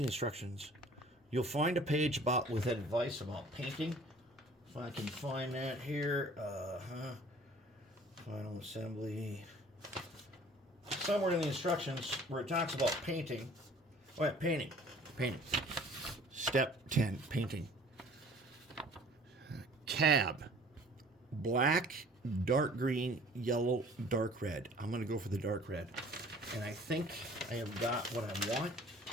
you'll find a page with advice about painting. If I can find that here, final assembly. Somewhere in the instructions where it talks about painting. Oh yeah, painting. Step 10, painting. Cab. Black, dark green, yellow, dark red. I'm going to go for the dark red. And I think I have got what I want.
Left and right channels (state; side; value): normal; both; correlation 0.51